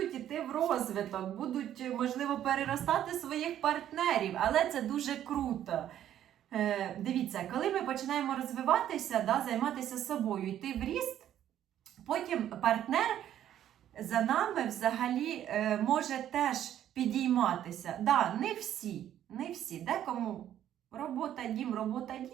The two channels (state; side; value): quieter; left; 11.1 dB